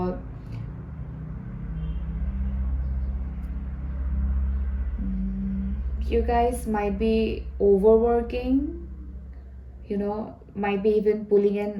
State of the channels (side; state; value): both; identical; correlation 1.00